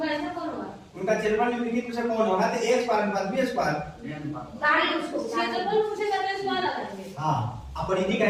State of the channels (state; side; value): identical; both; correlation 1.00